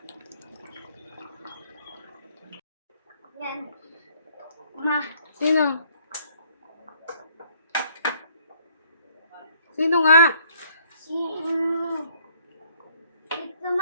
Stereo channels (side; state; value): both; inverted; correlation -0.64